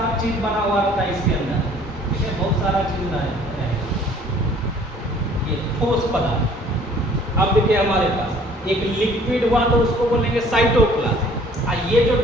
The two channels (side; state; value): both; normal; correlation 0.55